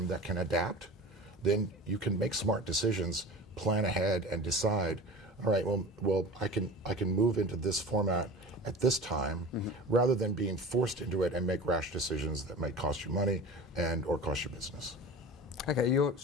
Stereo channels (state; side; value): normal; both; correlation 0.35